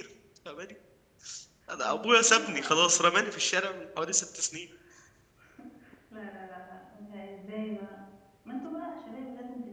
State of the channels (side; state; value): both; identical; correlation 1.00